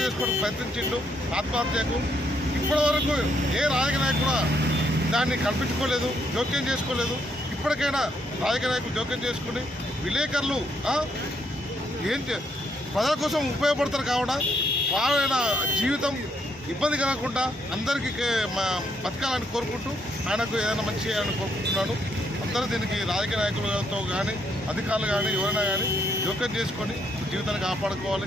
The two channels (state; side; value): normal; both; correlation 0.74